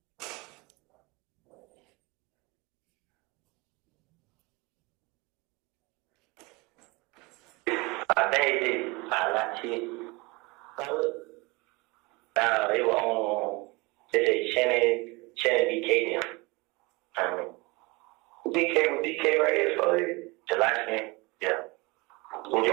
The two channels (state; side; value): quieter; left; 25.3 dB